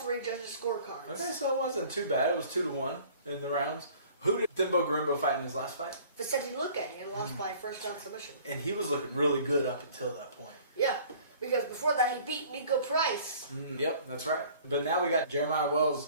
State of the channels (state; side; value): inverted; both; correlation -0.51